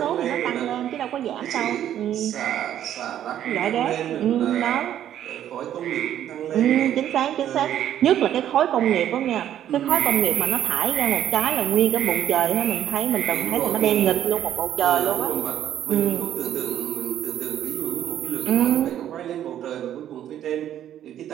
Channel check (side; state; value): left; quieter; 11.0 dB